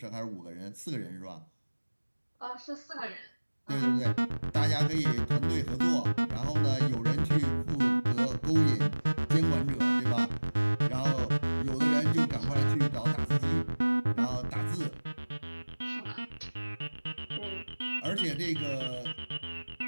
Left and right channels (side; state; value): both; inverted; correlation -1.00